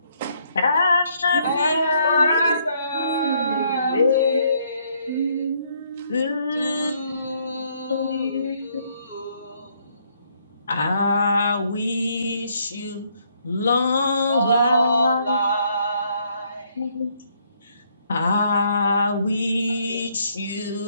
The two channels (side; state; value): both; inverted; correlation -0.69